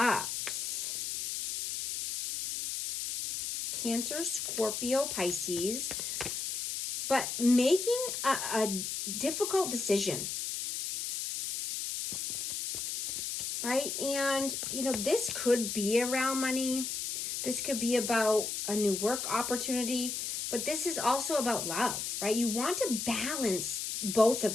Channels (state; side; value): noise; left; hiss, 3 dB below the sound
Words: Cancer, Scorpio, Pisces. But making a difficult decision, right? And, this could be around money. This could be about a new work opportunity, but this is also about love, right? You want to balance both